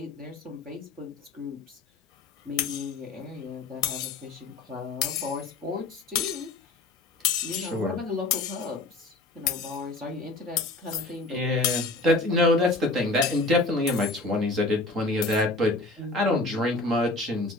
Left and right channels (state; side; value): quieter; right; 3.1 dB